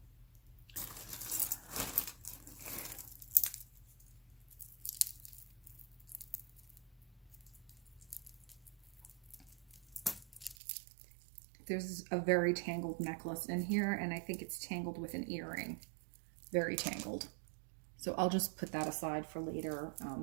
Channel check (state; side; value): drops out; left; at 10.6 s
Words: There's a very tangled necklace in here, and I think it's tangled with an earring. Very tangled. So I'll just put that aside for later